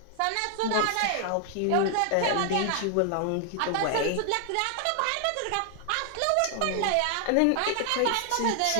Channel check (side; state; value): both; different; correlation 0.00